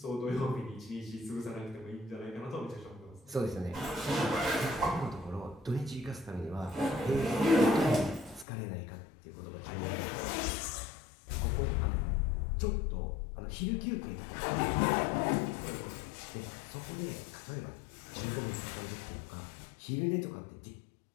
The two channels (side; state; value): right; drops out; at 8.5 s